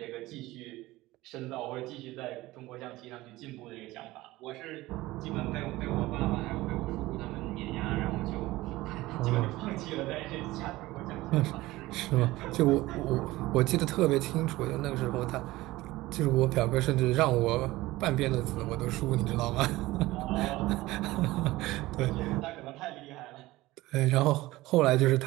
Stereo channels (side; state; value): left; quieter; 18.5 dB